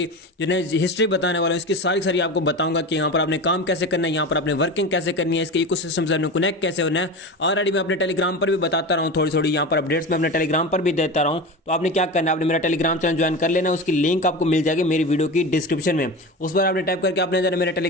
जो है हिस्ट्री बताने वाला हूँ। इसकी सारी की सारी आपको बताऊंगा कि यहाँ पर आपने काम कैसे करना है, यहाँ पर आपने वर्किंग कैसे करनी है, इसके इकोसिस्टम से आपने कनेक्ट कैसे होना है। ऑलरेडी मैं अपने टेलीग्राम पर भी बताता रहा हूँ, थोड़ी थोड़ी यहाँ पर अपडेट्स में अपने टेलीग्राम पर भी देता रहा हूँ। तो आपने क्या करना है, आपने मेरा टेलीग्राम चैनल ज्वाइन कर लेना। उसकी लिंक आपको मिल जाएगी मेरी वीडियो की डिस्क्रिप्शन में। उस पर आपने टाइप करके आपने जाना मेरे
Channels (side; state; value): both; normal; correlation 0.27